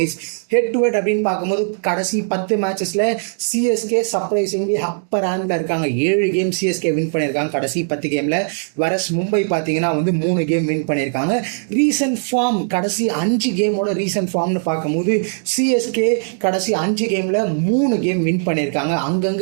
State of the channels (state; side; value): silent; left; digital silence